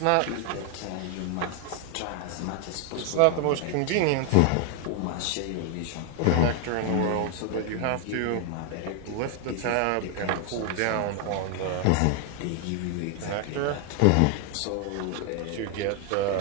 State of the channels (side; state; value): both; different; correlation 0.00